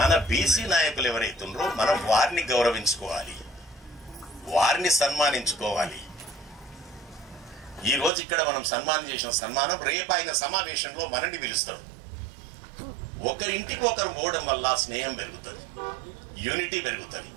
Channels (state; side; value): drops out; left; at 8.1 s